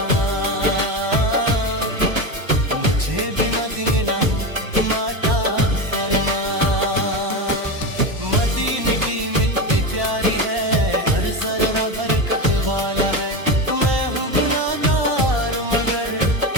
मुझे भी मदीना हूँ माता फरमा। मदीने की मिट्टी प्यारी है, हर जर्रा बरकत वाला है। मैं हूँ गुनाहगार, मगर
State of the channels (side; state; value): left; late; 1.1 ms